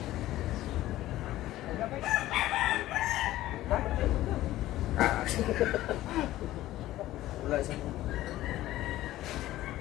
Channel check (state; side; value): quieter; right; 15.2 dB